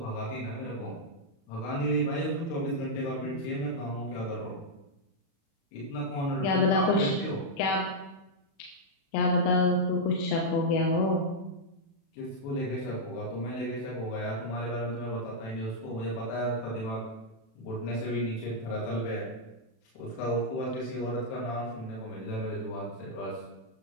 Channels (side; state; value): right; late; 36 ms